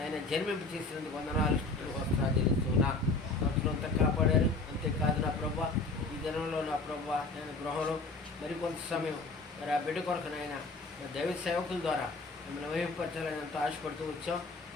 జన్మింపు చేసినందుకు వందనాలు స్థుతులు వస్త్రాలు చెల్లిస్తున్నా. సంవత్సరం అంతా కాపాడారు. అంతేకాదు నా ప్రభువా ఈ దినంలో నా ప్రభువా నేను గృహంలో మరికొంత సమయం మరి ఆ బిడ్డ కొరకు నాయన దైవ సేవకుల ద్వారా మిమ్మల్ని వహింపరచాలని ఎంతో ఆశపడుతూ వచ్చాం.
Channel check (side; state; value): right; quieter; 3.5 dB